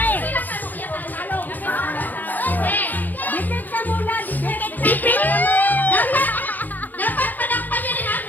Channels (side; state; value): right; late; 0.086 ms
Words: eh. Dikit ka muna, dikit. Ipit! Dapat panakpan nyo rin ang